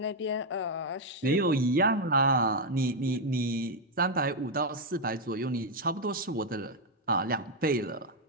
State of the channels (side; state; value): both; normal; correlation 0.02